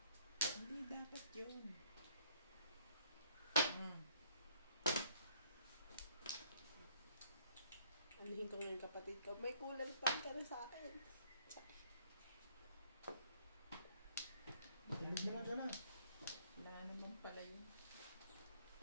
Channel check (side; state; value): both; inverted; correlation -0.63